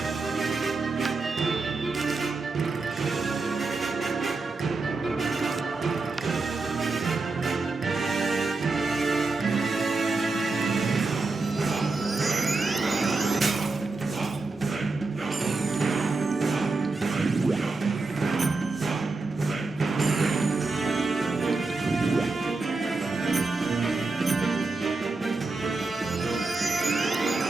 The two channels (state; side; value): quieter; left; 3.7 dB